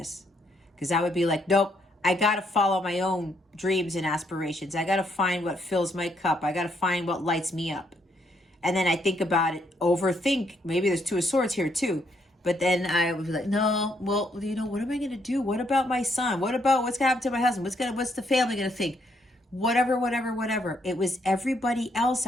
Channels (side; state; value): both; normal; correlation 0.73